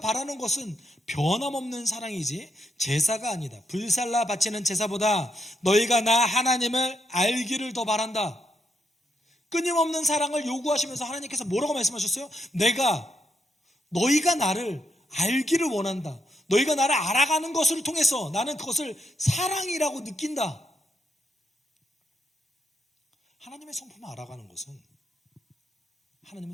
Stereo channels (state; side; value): normal; both; correlation 0.79